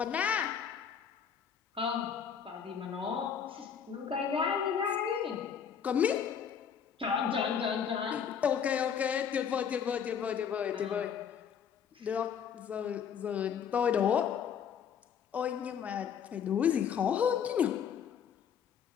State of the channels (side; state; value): right; quieter; 7.7 dB